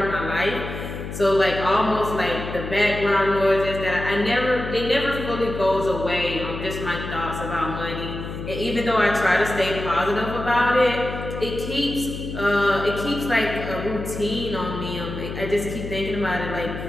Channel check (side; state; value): left; noise; hum, 8 dB below the sound